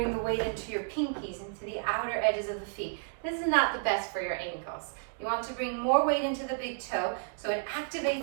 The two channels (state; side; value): silent; left; digital silence